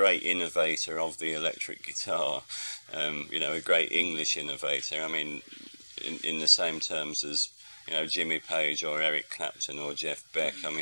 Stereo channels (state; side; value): inverted; both; correlation -1.00